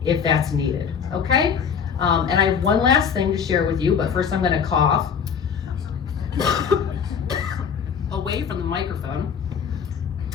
if that's needed, okay? And I have one last thing to share with you, but first I'm gonna cough away from the microphone.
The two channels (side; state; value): right; quieter; 7.0 dB